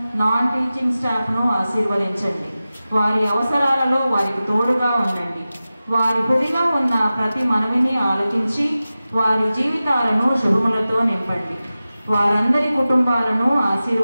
నాన్ టీచింగ్ స్టాఫ్ను ఆశీర్వదించండి. వారి అవసరాలలో వారికి తోడుగా ఉండండి. వారి హృదయంలో ఉన్న ప్రతి మనవిని ఆలకించి వారి జీవితాలను శుభములతో నింపండి. వారందరి కుటుంబాలను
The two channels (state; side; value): inverted; both; correlation -0.95